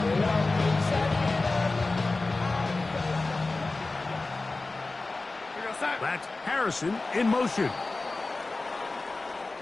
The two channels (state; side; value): quieter; right; 3.4 dB